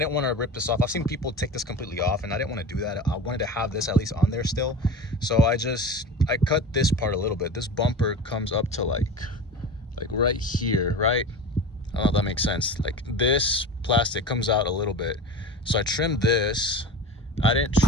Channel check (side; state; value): both; normal; correlation 0.31